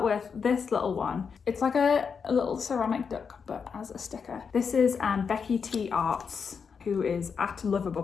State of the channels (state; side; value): quieter; right; 6.0 dB